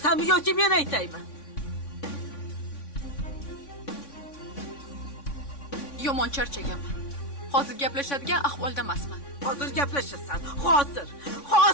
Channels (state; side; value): late; right; 3.5 ms